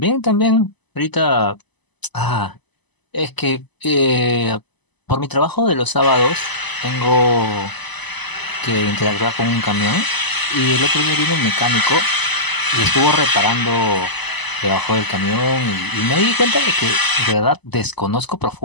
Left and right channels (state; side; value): late; right; 1.0 ms